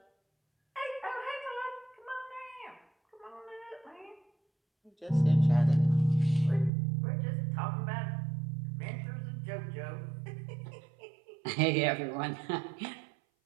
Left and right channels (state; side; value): drops out; left; at 6.7 s